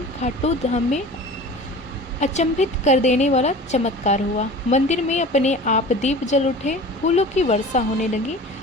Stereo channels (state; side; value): normal; both; correlation 0.38